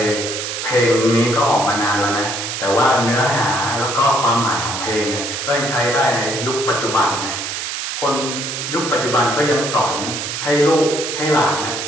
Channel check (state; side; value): noise; right; hiss, 4 dB below the sound